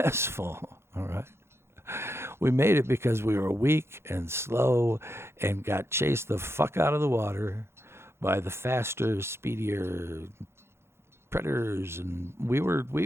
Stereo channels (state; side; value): late; left; 0.12 ms